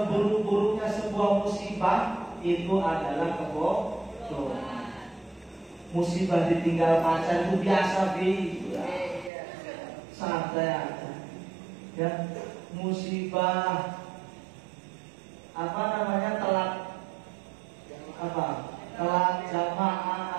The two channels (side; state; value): left; drops out; at 9.3 s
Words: sebuah musibah itu adalah kebodohan. Musibah ditinggal pacar itu biasa, santai aja. Ya. Musibah telat jamaah